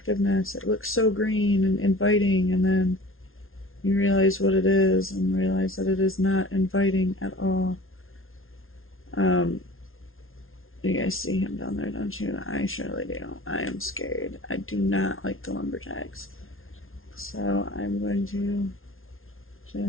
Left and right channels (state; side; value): late; right; 0.61 ms